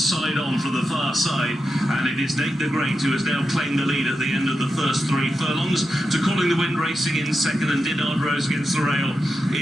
on from the far side, and it is Nate the Great who has now claimed the lead at the end of the first 3 furlongs, to Calling the Wind racing in second, and Dinard Rose against the rail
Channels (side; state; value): both; normal; correlation 0.88